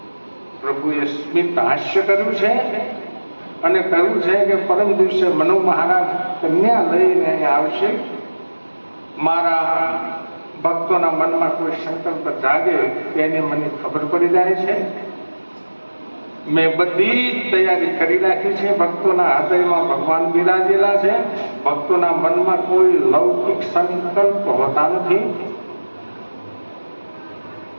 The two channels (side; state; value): both; inverted; correlation -1.00